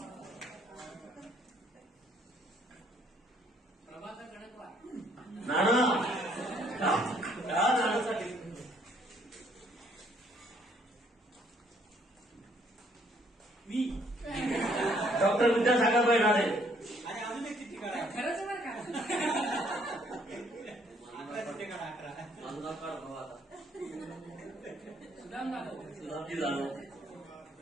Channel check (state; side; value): normal; both; correlation 0.66